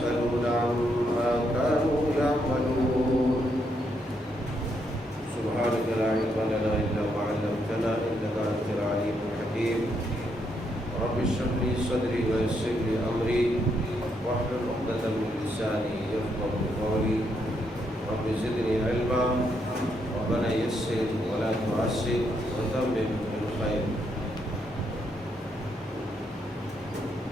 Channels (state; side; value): normal; both; correlation 0.77